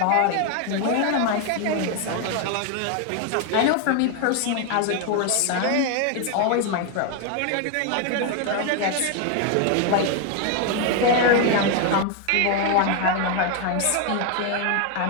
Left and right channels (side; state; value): both; different; correlation 0.01